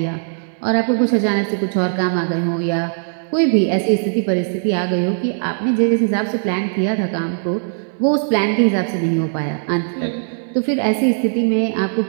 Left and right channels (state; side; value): silent; left; digital silence